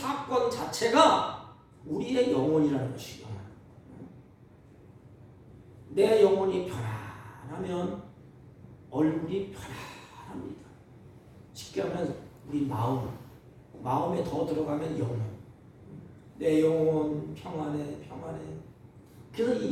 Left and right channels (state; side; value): identical; both; correlation 1.00